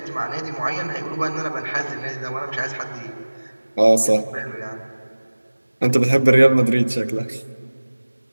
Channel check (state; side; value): inverted; both; correlation -1.00